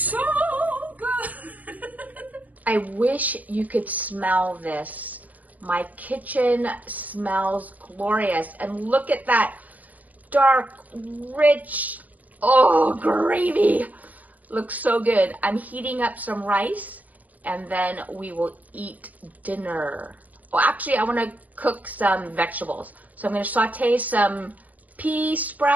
good. I wish you could smell this. My kitchen smells glorious. And look at that dark, rich, gravy. Looks so good. I'm heating up some rice, and then we will eat dinner. Well, actually, I want to cook some vegetables. So I'm going to saute some pea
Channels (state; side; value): late; left; 0.076 ms